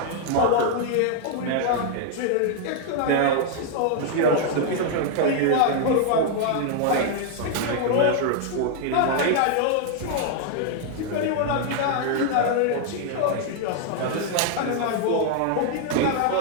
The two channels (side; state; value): both; different; correlation 0.00